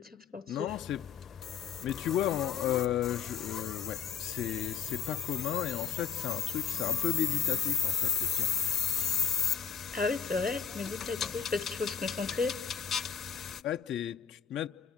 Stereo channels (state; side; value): quieter; right; 7.3 dB